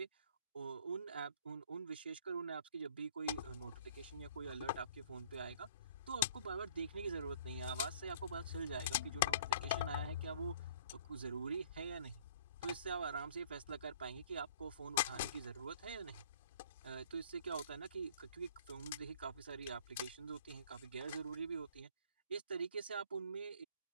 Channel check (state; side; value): inverted; both; correlation -0.54